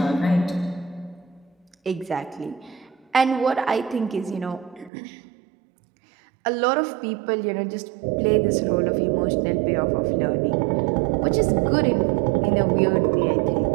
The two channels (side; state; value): left; drops out; at 4.9 s